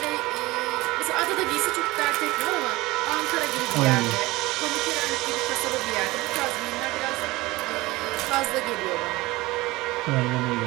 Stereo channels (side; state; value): left; quieter; 20.3 dB